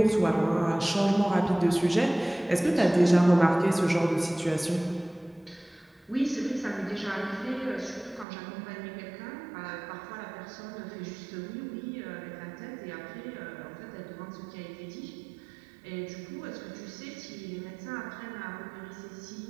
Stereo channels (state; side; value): drops out; left; at 8.2 s